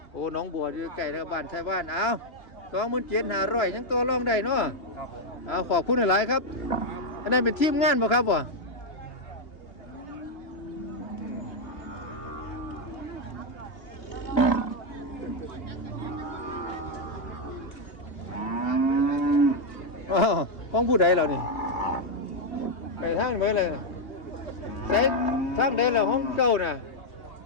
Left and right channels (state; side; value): late; right; 2.8 ms